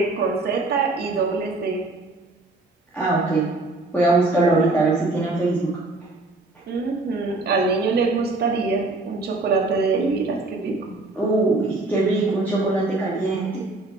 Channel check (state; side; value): quieter; left; 3.0 dB